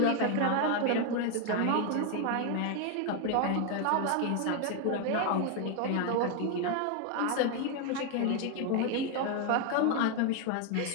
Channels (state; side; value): different; both; correlation 0.01